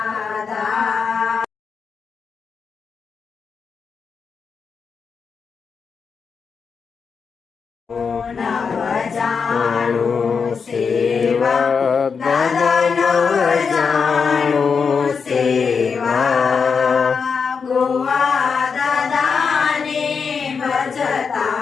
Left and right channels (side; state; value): right; quieter; 5.7 dB